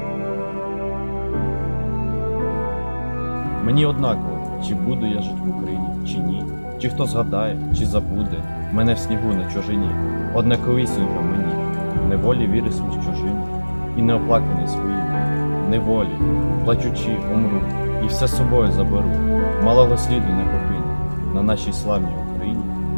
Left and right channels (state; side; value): inverted; both; correlation -1.00